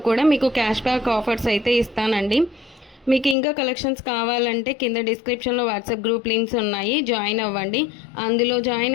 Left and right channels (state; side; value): drops out; right; at 3.4 s